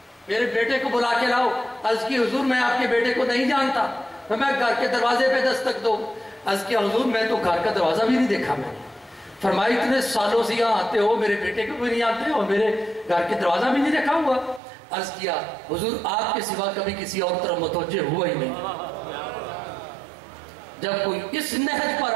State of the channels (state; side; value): drops out; left; at 14.6 s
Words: میرے بیٹے کو بلا کے لاؤ. عرض کی حضور میں آپ کے بیٹے کو نہیں جانتا, میں گھر کے دروازے پہ دستک دو. عرض کی حضور میں تو گھر کا دروازہ بھی نہیں دیکھا. میں فرمائی اتنے سالوں سے یہاں آتے ہو, میرے بیٹے کو بھی نہیں آتے اور میرے گھر کے دروازہ بھی نہیں دیکھا ہوا. عرض کیا حضور آپ کے سوا کبھی کسی اور طرف متوجہ ہوا ہی نہیں. جب کوئی اس نہج پر